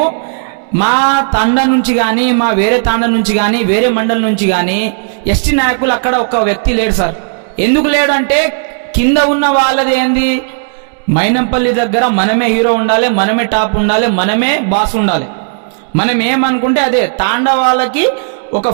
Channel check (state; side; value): silent; left; digital silence